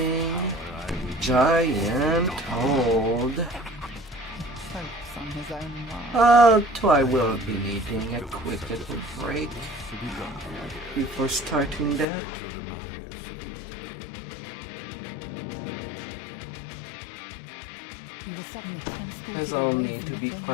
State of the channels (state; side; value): drops out; right; at 12.1 s